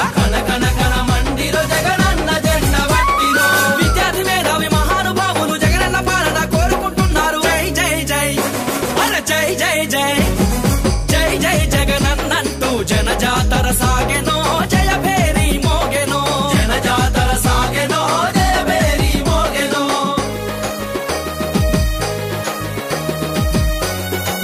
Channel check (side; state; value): both; identical; correlation 1.00